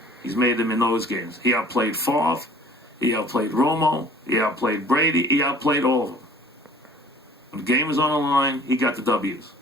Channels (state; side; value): normal; both; correlation 0.51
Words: He's made them in those games. He outplayed Favre. He outplayed Romo. He outplayed Brady. He outplayed all of them. When the game was on the line, he got the W's.